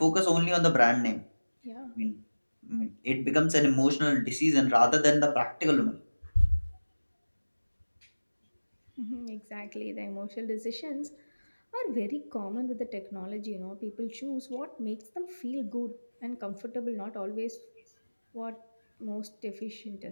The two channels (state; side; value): inverted; both; correlation -1.00